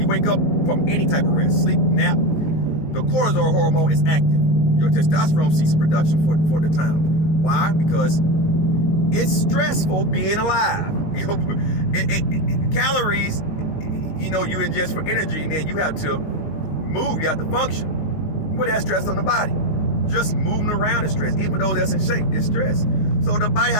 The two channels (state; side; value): late; right; 19 ms